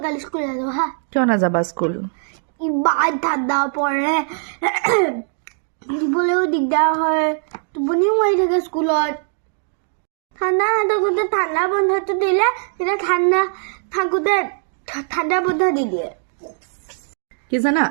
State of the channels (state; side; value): silent; left; 63 dB below the other